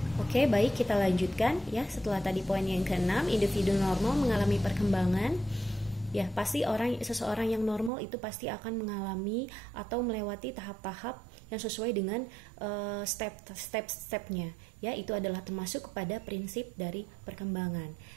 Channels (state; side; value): drops out; left; at 7.9 s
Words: Oke, baik, kita lanjutkan ya. Setelah tadi poin yang ke-6, individu normal mengalami perkembangan. Ya, pasti seseorang yang normal itu pasti akan mengalami atau melewati tahap-tahap yang sesuai dengan step-stepnya. Ya, itu adalah termasuk kepada prinsip dari perkembangan.